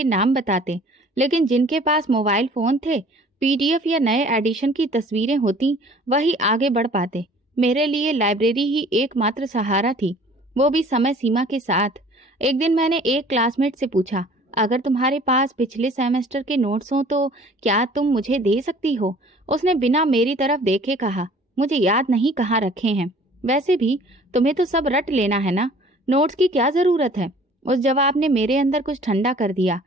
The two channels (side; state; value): both; normal; correlation 0.51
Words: नाम बताते, लेकिन जिनके पास मोबाइल फोन थे, पीडीएफ या नए एडिशन की तस्वीरें होती, वही आगे बढ़ पाते। मेरे लिए लाइब्रेरी ही एकमात्र सहारा थी, वो भी समय सीमा के साथ। एक दिन मैंने एक क्लासमेट से पूछा, अगर तुम्हारे पास पिछले सेमेस्टर के नोट्स हो तो क्या तुम मुझे दे सकती हो? उसने बिना मेरी तरफ देखे कहा, मुझे याद नहीं कहाँ रखे हैं। वैसे भी तुम्हें तो सब रट लेना है ना, नोट्स की क्या जरूरत है? उस जवाब ने मेरे अंदर कुछ ठंडा कर दिया,